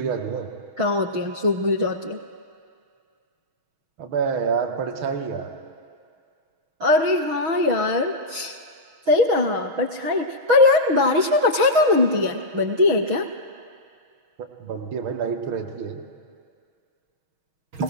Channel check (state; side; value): late; left; 6.1 ms